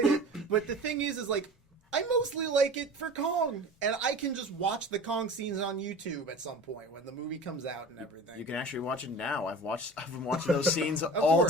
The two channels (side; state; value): both; normal; correlation 0.37